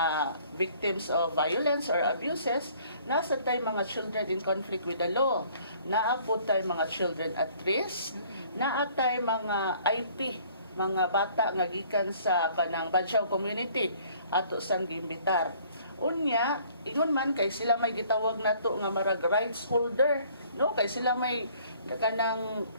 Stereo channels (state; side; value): inverted; both; correlation -0.57